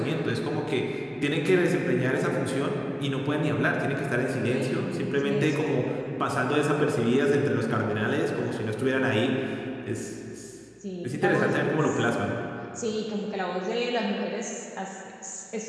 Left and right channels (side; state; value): both; identical; correlation 1.00